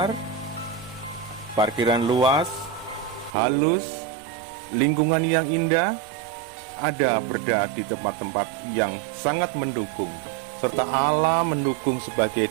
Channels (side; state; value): left; drops out; at 3.4 s